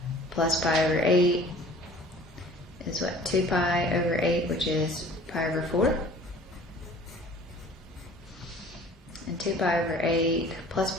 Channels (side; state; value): both; normal; correlation 0.48